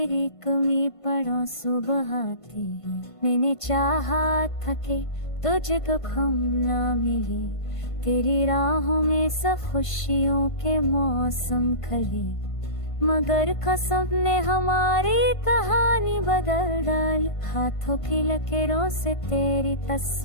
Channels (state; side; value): late; right; 1.5 ms